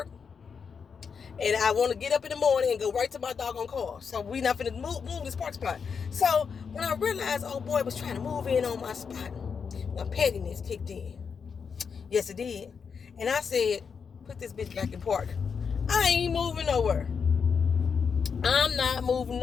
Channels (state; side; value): quieter; right; 6.1 dB